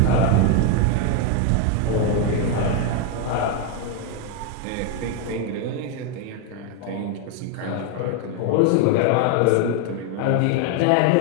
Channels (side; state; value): both; different; correlation 0.01